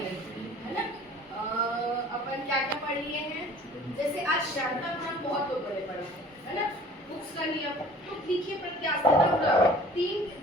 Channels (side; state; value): both; normal; correlation 0.48